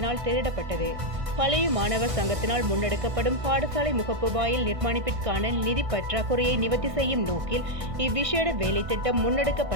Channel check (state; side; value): late; left; 1.6 ms